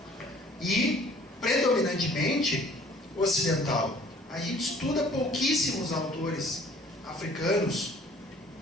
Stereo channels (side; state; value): both; normal; correlation 0.54